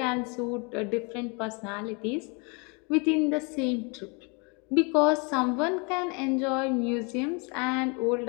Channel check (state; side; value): quieter; right; 32.2 dB